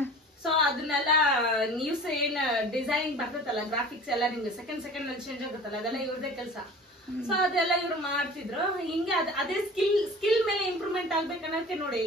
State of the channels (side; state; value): both; normal; correlation 0.41